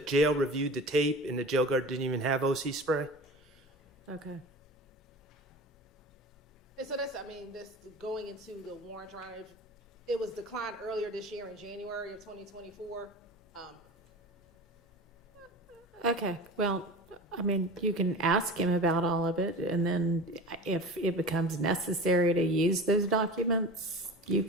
jail reviewed the tape, and the jail guard didn't even have OC spray. Okay. And so that's, this going into the warrant trial, it was declined earlier this year in January of 2024. Okay, well, you can ask him about all of it, and then if it becomes necessary to use those documents, you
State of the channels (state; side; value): normal; both; correlation 0.34